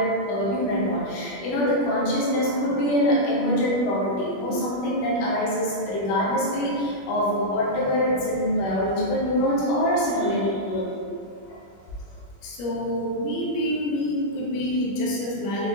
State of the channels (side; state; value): right; late; 21 ms